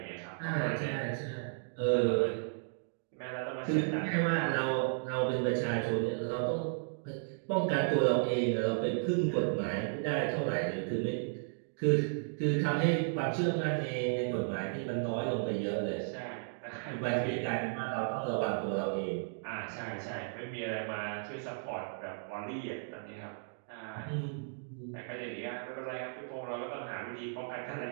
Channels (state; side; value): silent; left; digital silence